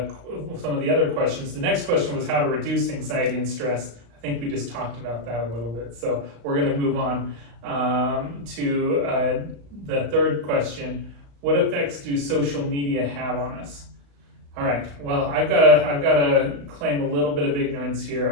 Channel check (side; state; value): left; late; 35 ms